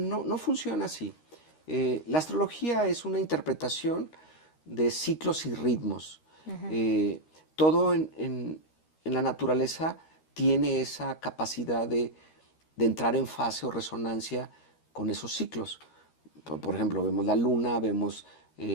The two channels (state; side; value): late; right; 13 ms